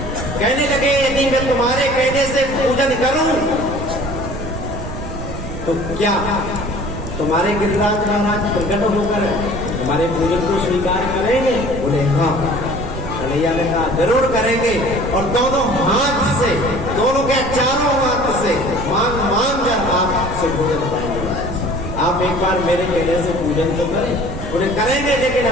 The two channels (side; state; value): right; noise; rumble, 7 dB below the sound